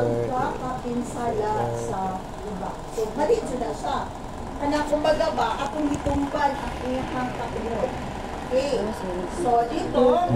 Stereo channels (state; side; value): identical; both; correlation 1.00